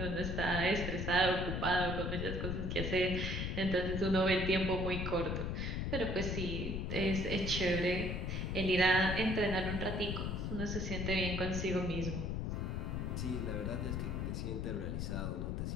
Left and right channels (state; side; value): noise; left; rumble, 1 dB below the sound